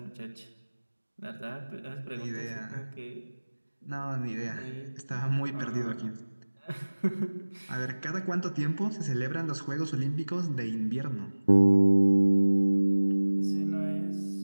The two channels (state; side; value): inverted; both; correlation -1.00